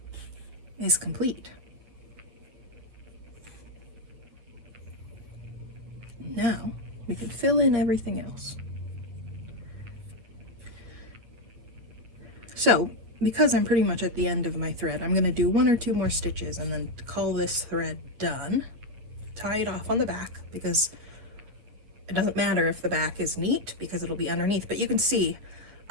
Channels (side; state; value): left; late; 9.0 ms